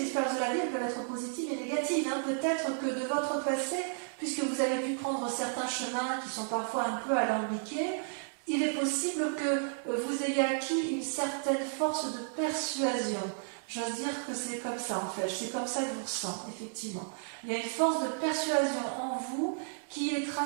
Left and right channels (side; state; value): left; silent; digital silence